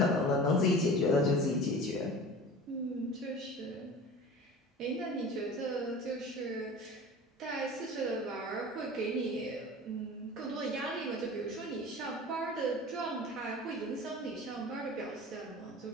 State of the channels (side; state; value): both; normal; correlation 0.38